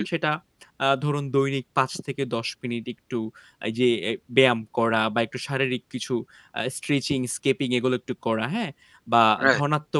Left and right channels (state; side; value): identical; both; correlation 1.00